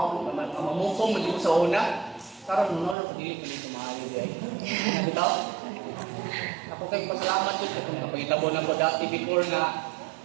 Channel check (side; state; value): left; drops out; at 3.0 s